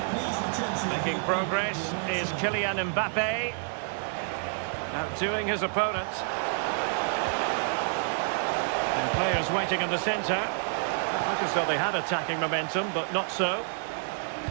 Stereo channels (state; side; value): silent; left; 59 dB below the other